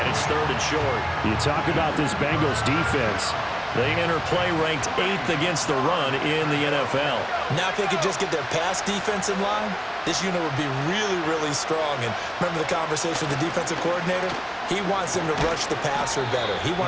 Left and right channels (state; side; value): identical; both; correlation 1.00